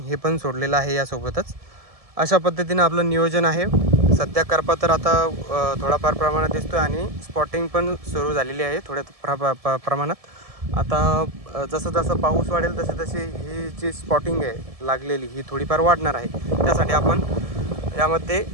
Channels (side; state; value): left; late; 1.7 ms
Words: हे पण सोडलेलं आहे यासोबतच. अशा पद्धतीनं आपलं नियोजन आहे. सध्या करपा तर आता थोडाफार प्रमाणात दिसतो आहे आणि स्पॉटिंग पण सुरू झालेली आहे थोड्या प्रमाणात. आता जसं जसं पाऊस वाढेल तसे तसे ही जी स्पॉटिंग आहे लागलेली ही थोडीफार वाढणार आहे. त्यासाठी आपण यामध्ये